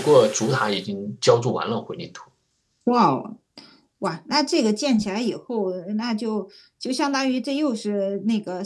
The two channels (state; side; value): identical; both; correlation 1.00